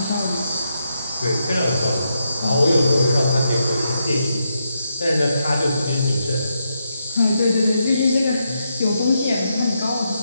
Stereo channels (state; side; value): inverted; both; correlation -0.82